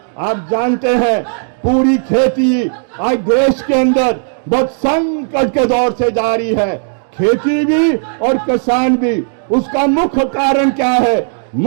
आप जानते हैं पूरी खेती आज देश के अंदर बहुत संकट के दौर से जारी है, खेती भी और किसान भी। उसका मुख्य कारण क्या है?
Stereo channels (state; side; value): silent; left; digital silence